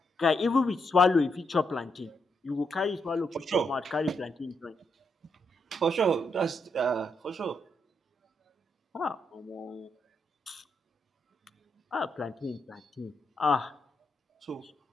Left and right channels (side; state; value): both; normal; correlation 0.80